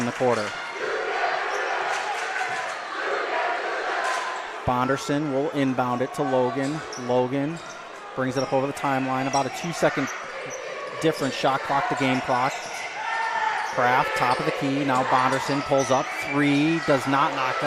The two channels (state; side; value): identical; both; correlation 1.00